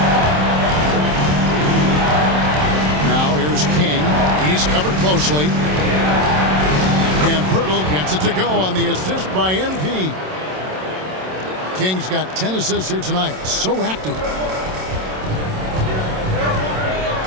Now here's King. He's covered closely. And Pirtle gets it to go on the assist by MP. King's got 10 assists here tonight. So active.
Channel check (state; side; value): late; left; 27 ms